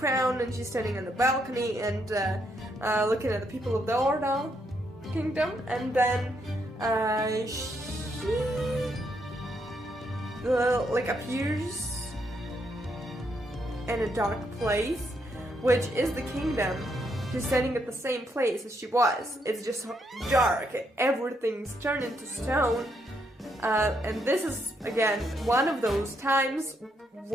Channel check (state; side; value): normal; both; correlation 0.76